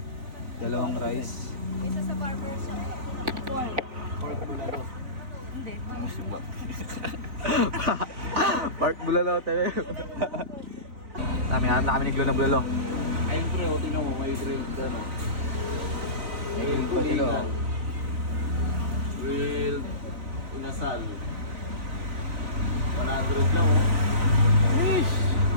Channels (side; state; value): left; late; 3.9 ms